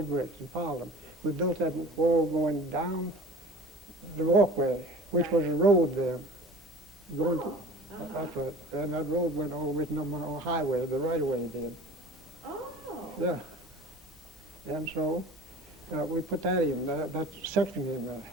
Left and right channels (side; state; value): both; normal; correlation 0.42